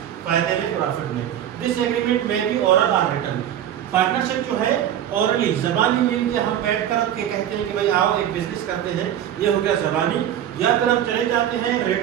फायदे में, प्रॉफिट में. दिस एग्रीमेंट में बी ओरल और रिटन. पार्टनरशिप जो है ओरली जबानी मिल के हम बैठ कर के कहते हैं कि भाई आओ एक बिजनेस करते हैं, ये हो गया जबानी. या फिर हम चले जाते हैं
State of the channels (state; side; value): quieter; left; 10.7 dB